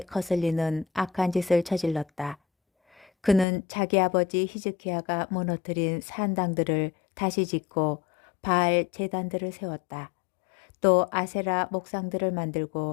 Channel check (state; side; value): drops out; right; at 3.5 s